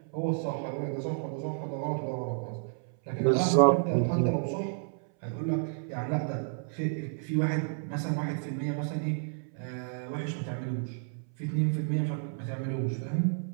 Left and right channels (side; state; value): left; silent; 57 dB below the other